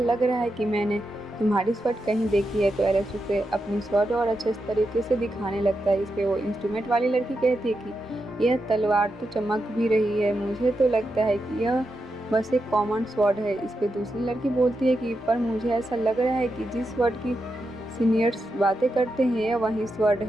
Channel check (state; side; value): normal; both; correlation 0.86